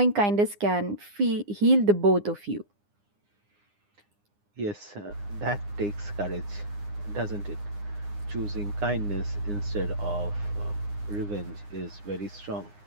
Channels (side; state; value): left; late; 9.8 ms